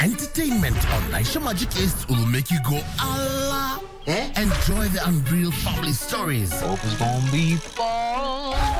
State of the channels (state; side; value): identical; both; correlation 1.00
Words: on Naisha Magic East will make you go Allah. Enjoy the unreal family stories. Hope it's gonna be fun.